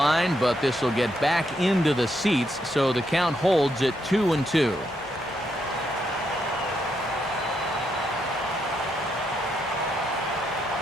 but this will get back into the seats, so the count holds at 2-2.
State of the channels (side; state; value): both; normal; correlation 0.79